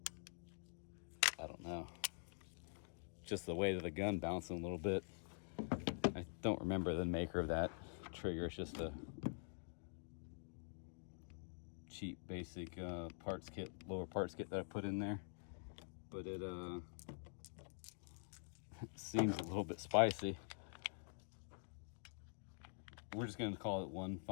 I don't know, just the weight of the gun bouncing a little bit. I don't remember the maker of that trigger. It's just a cheap basic parts kit, lower parts kit that I put in there, but it seems a little bit spicy. We're just going to call it one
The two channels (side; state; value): right; silent; digital silence